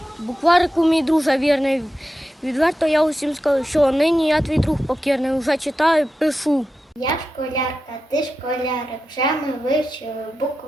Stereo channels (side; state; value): both; normal; correlation 0.91